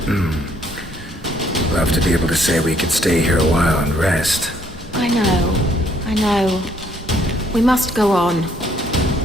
Love to be able to say we could stay here a while and rest. I know. We must go on.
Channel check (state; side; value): normal; both; correlation 0.67